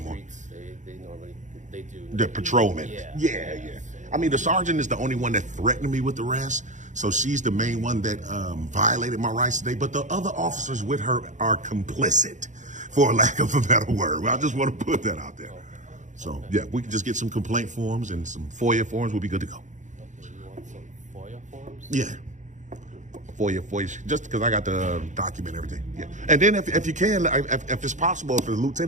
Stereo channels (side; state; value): left; late; 0.35 ms